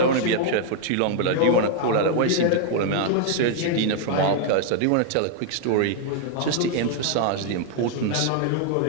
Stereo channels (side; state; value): both; different; correlation 0.00